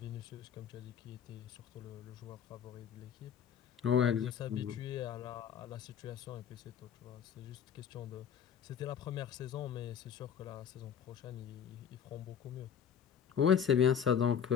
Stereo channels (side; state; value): right; quieter; 8.1 dB